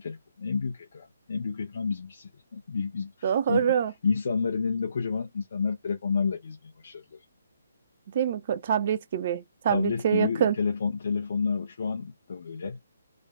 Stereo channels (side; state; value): both; inverted; correlation -0.71